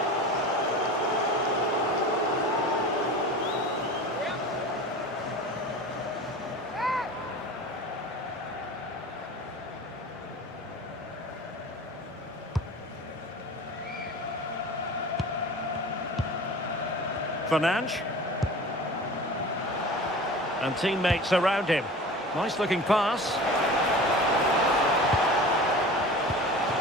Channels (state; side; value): normal; both; correlation 0.37